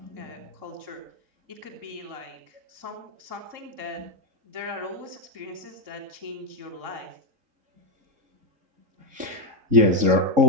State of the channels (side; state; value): left; late; 3.7 ms